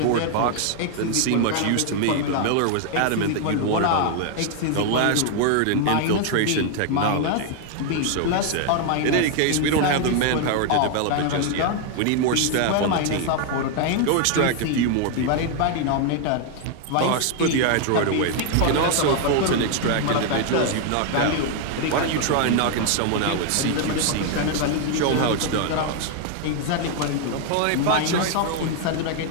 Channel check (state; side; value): different; both; correlation 0.00